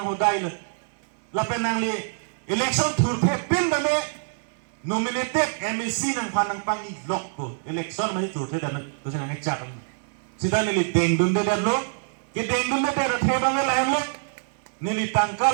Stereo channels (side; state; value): left; silent; digital silence